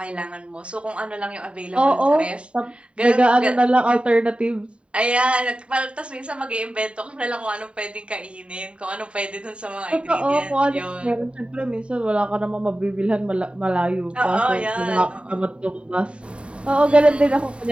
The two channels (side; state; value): left; late; 0.058 ms